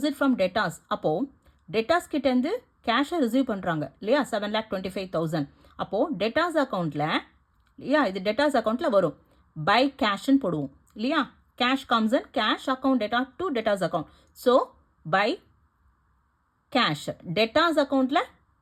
from debtors. அப்போது டேட்டாஸ் கிட்டேருந்து கேஷை ரிசீவ் பண்ணுறாங்க இல்லையா, 7,25,000. அப்போது டேட்டாஸ் அக்கௌண்ட்டில் இல்லையா, இது டேட்டாஸ் அக்கௌண்ட்டில் வரும். பை கேஷ்ன்னு போடுவோம் இல்லையா. Cash comes in cash account debtor to debtors account. So by cash debtors அக்கௌண்ட்டில்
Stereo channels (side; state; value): both; identical; correlation 1.00